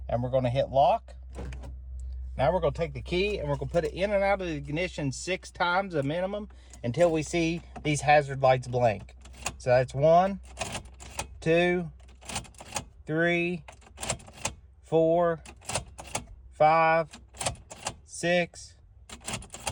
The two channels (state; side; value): identical; both; correlation 1.00